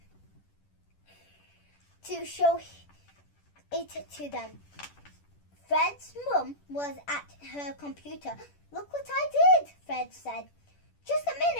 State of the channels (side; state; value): right; late; 10 ms